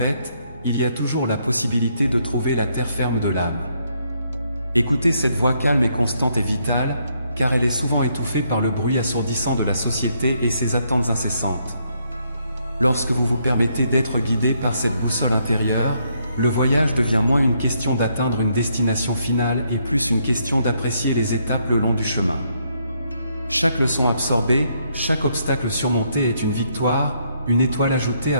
il y a toujours la possibilité de trouver la terre ferme de l'âme. Écoutez cette voix calme et constante et vitale, car elle est souvent étouffée par le bruit assourdissant de la société et ses attentes incessantes. Lorsque vous vous permettez d'être guidé par cette boussole intérieure, le voyage devient moins une question d'atteindre une destination finale et plus une question d'apprécier les étapes le long du chemin. Chaque leçon absorbée, chaque obstacle surmonté est une victoire, une étoile ajoutée à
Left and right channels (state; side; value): inverted; both; correlation -0.74